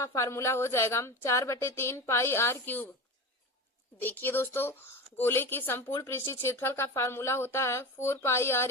फार्मूला हो जाएगा 4/3 पाई आर क्यूब। देखिए दोस्तों, गोले की संपूर्ण पृष्ठीय क्षेत्रफल का फार्मूला होता है 4 पाई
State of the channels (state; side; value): normal; both; correlation 0.27